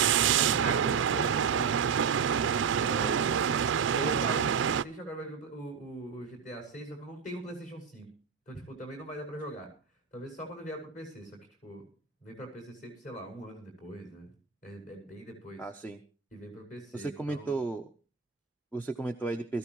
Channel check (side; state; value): left; quieter; 6.6 dB